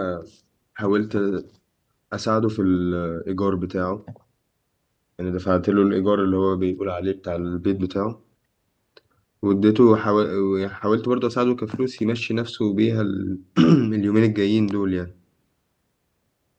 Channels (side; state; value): both; identical; correlation 1.00